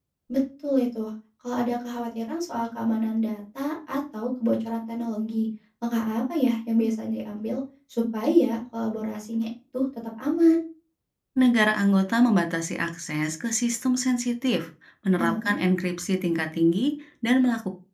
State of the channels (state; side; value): identical; both; correlation 1.00